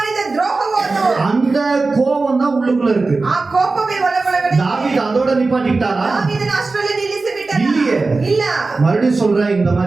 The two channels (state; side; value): quieter; left; 3.7 dB